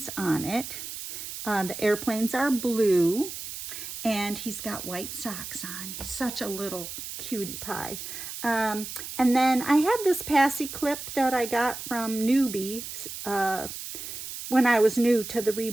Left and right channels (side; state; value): right; noise; hiss, 9 dB below the sound